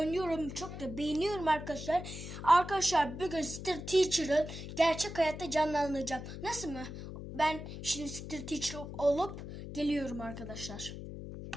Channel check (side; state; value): left; noise; hum, 9 dB below the sound